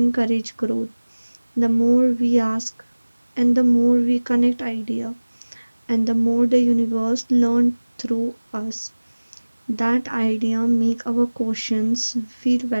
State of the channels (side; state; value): both; inverted; correlation -1.00